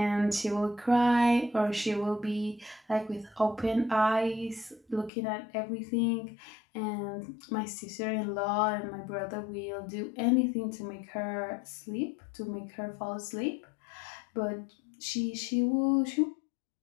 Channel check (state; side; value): drops out; right; at 5.1 s